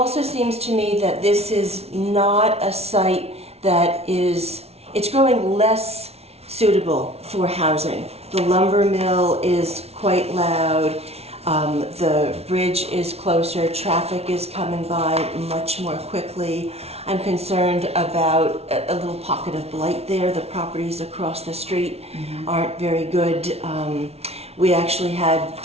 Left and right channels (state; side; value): late; left; 0.30 ms